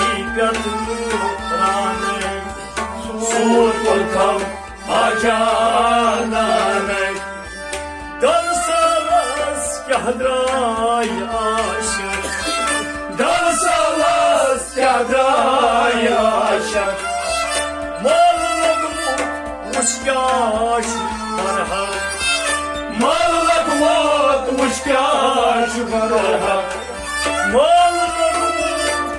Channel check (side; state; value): both; identical; correlation 1.00